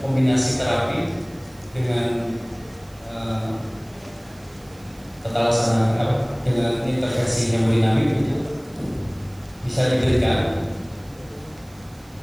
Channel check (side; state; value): right; noise; hiss, 27 dB below the sound